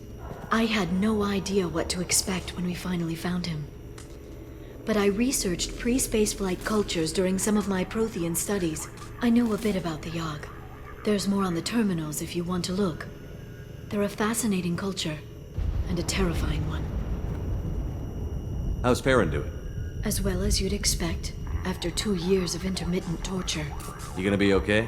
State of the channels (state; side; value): identical; both; correlation 1.00